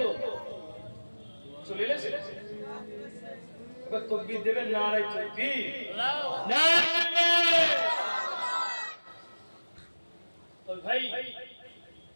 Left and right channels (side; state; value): both; inverted; correlation -1.00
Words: চলে এসেছে? এবার তাকবীর দেবেন, নারায়ে তাকবীর, নারায়ে। তো ভাই